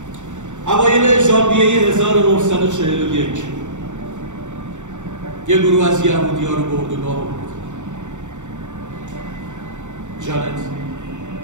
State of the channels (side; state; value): left; late; 0.85 ms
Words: اوایل ژانویه 1941 یه گروه از یهودی‌ها رو به اردوگاه برد. جانت